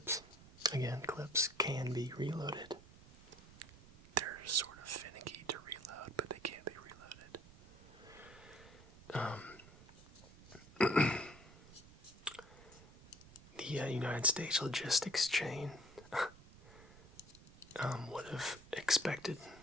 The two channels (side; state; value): right; noise; rumble, 20 dB below the sound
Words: Again, clips can be reloaded. They're sort of finicky to reload, but they can be reloaded. The United States logistics chain would have expected